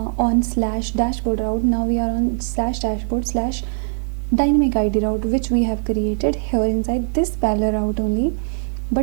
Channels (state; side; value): silent; left; 56 dB below the other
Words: slash dashboard route. Now we are on slash dashboard slash dynamic ID route, which we have created here inside this parallel route only.